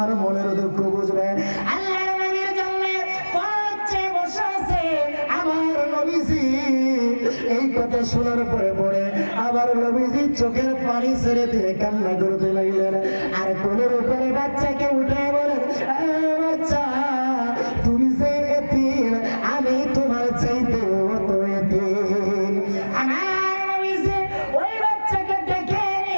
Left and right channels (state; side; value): inverted; both; correlation -1.00